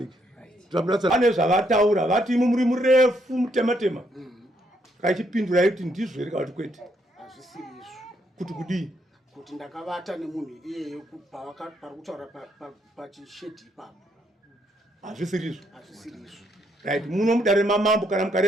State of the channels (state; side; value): normal; both; correlation 0.74